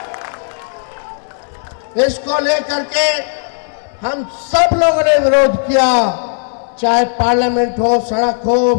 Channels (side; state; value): right; silent; digital silence